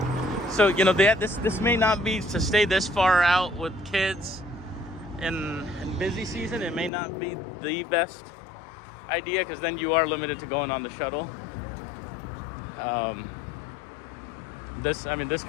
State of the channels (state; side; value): drops out; right; at 6.9 s